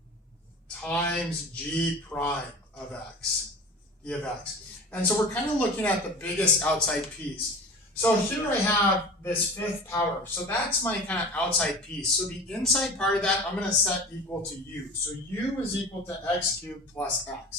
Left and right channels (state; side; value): normal; both; correlation 0.36